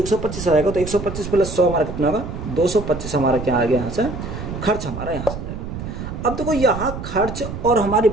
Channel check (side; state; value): right; noise; rumble, 7 dB below the sound